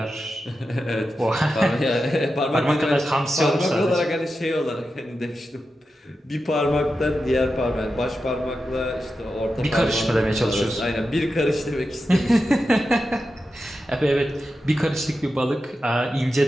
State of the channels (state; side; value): normal; both; correlation 0.90